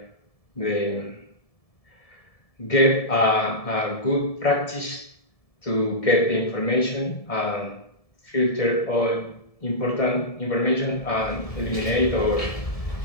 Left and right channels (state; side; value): late; right; 1.7 ms